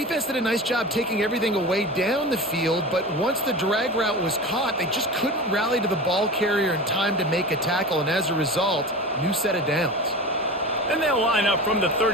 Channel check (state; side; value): normal; both; correlation 0.30